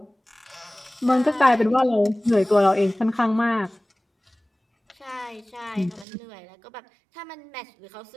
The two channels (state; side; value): drops out; left; at 6.1 s